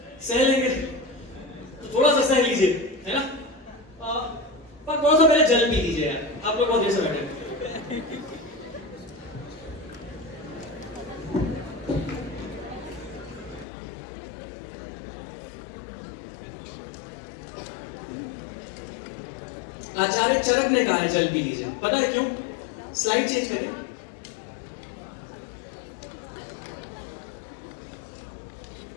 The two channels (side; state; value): right; drops out; at 13.7 s